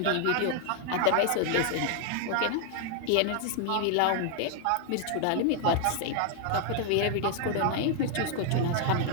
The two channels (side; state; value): both; different; correlation 0.00